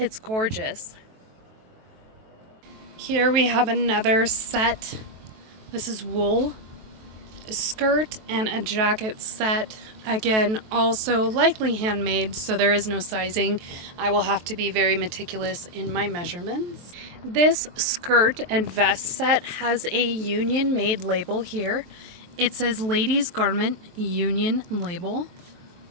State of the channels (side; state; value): left; late; 23 ms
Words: gorgeous. Here we have another set. This is wool, a skirt and a jacket set. Again, also likely handmade, so there is no sizing. I will have to be very meticulous in my measurements. This skirt and vest set has a union made label here. It says ladies garment union label.